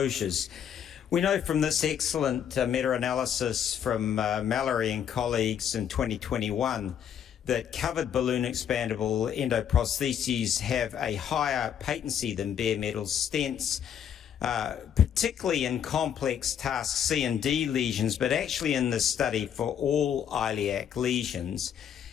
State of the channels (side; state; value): right; quieter; 8.9 dB